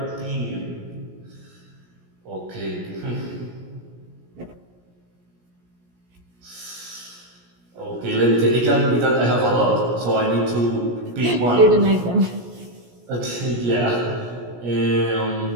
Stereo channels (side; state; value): left; late; 17 ms